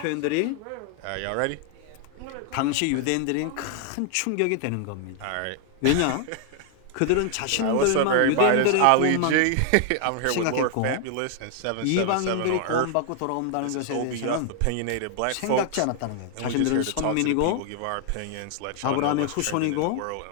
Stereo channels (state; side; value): different; both; correlation 0.00